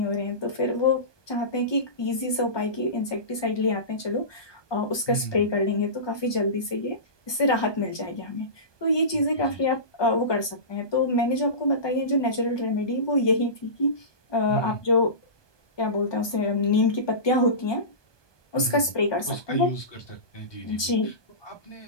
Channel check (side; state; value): right; late; 1.2 ms